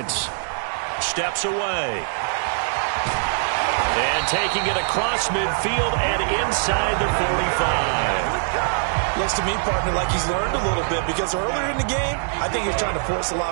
Steps away. And taking it across midfield and inside the 45. Looks to me, partner, like he's learned a little bit because earlier in the game, I think he was trying to force a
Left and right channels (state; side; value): silent; left; digital silence